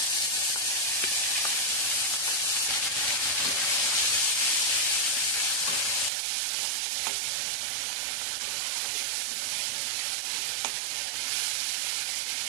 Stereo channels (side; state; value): left; drops out; at 6.1 s